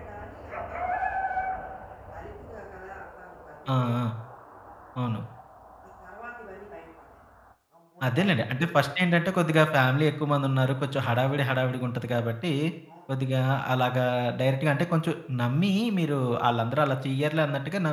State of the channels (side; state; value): both; identical; correlation 1.00